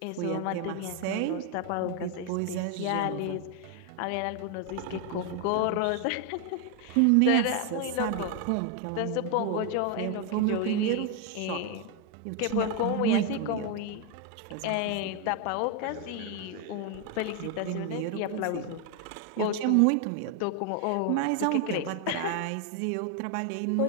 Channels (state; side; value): different; both; correlation 0.01